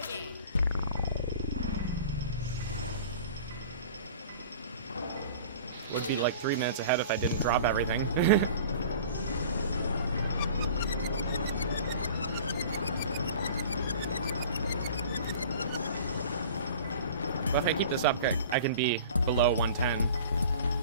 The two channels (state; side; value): inverted; both; correlation -0.43